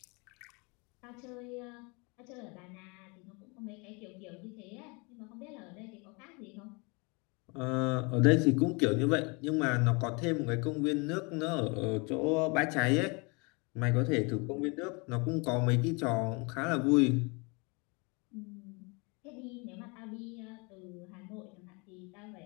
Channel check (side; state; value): right; quieter; 30.1 dB